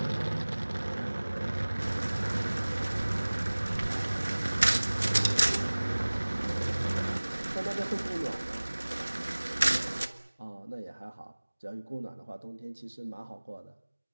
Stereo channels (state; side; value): inverted; both; correlation -1.00